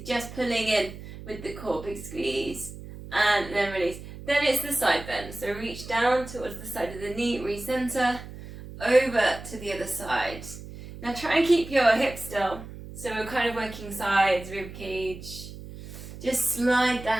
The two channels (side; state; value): right; noise; hum, 13 dB below the sound